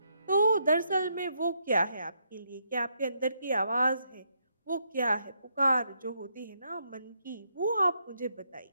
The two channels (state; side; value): inverted; both; correlation -0.77